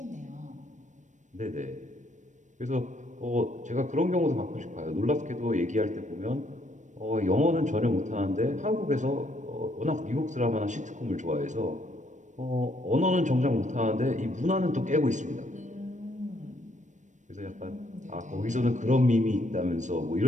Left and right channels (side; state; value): left; late; 0.35 ms